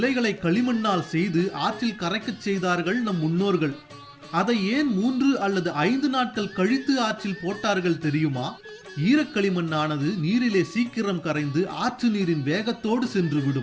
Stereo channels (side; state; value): both; identical; correlation 1.00